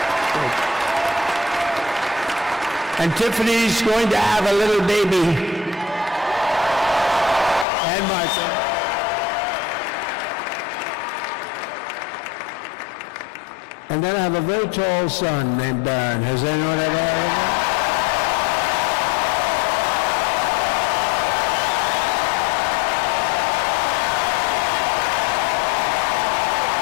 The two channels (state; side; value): drops out; right; at 7.7 s